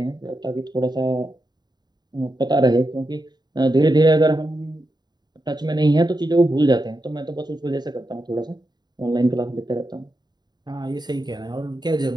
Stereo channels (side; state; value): left; late; 0.20 ms